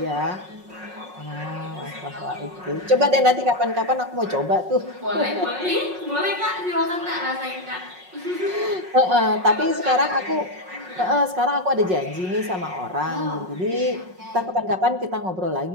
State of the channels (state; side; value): late; left; 5.4 ms